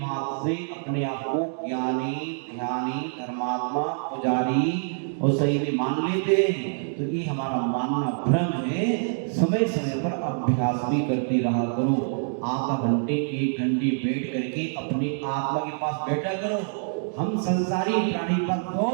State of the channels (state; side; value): silent; left; digital silence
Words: से अपने आप को ज्ञानी, ध्यानी, धर्मात्मा, पुजारी और सही में मान लेते हैं, तो ये हमारा मानना भ्रम है। समय समय पर अभ्यास भी करते रहा करो, आधा घंटे 1 घंटे बैठ करके अपनी आत्मा के पास बैठा करो। हम संसारी प्राणी पर